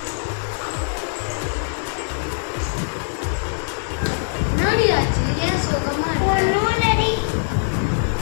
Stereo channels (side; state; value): right; silent; digital silence